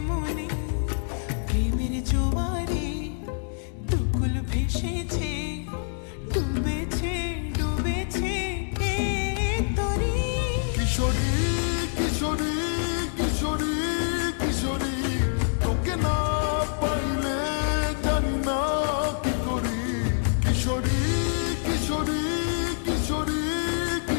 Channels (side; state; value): right; silent; digital silence